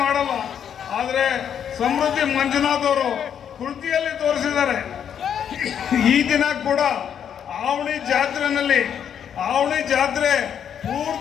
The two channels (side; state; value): right; quieter; 8.6 dB